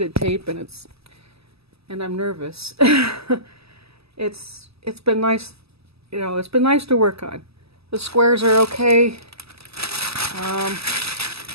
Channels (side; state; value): left; late; 0.78 ms